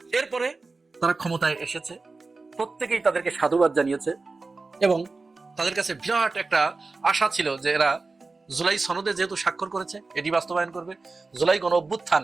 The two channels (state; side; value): quieter; left; 3.8 dB